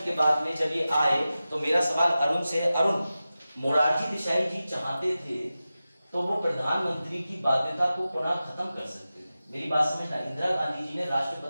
के बाद में जब ये आए तो मेरा सवाल अरुण से है, अरुण मोरारजी देसाई जी चाहते थे तो वो प्रधानमंत्री की बाध्यता को पुनः खत्म कर सकते थे। मेरी बात समझना, इंदिरा गांधी जी ने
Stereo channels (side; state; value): both; inverted; correlation -0.94